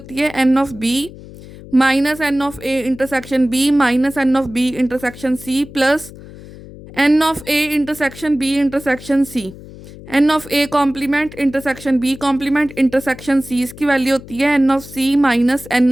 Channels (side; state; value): left; noise; hum, 17 dB below the sound